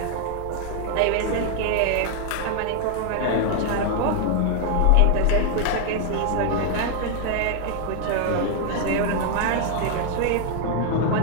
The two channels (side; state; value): both; different; correlation 0.00